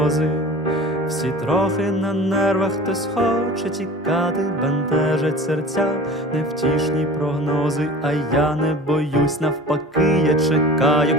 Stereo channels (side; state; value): both; normal; correlation 0.39